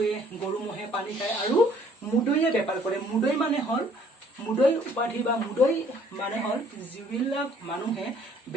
গৰু ম'হে পানী খায় আৰু মুদৈয়ে বেপাৰ কৰে। মুদৈ মানে হ'ল, মুদৈ উপাধি বা মুদৈ মানে হ'ল যিবিলাক মানুহে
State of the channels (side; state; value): both; normal; correlation 0.60